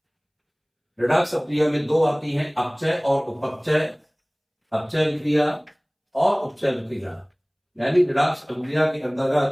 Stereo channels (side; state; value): both; identical; correlation 1.00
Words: रिडॉक्स क्रिया में दो आती हैं, अपचय और उपचय। अपचय क्रिया और उपचय क्रिया, यानी रिडॉक्स क्रिया के